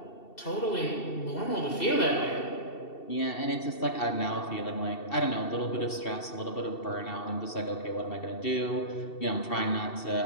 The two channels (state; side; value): late; right; 2.7 ms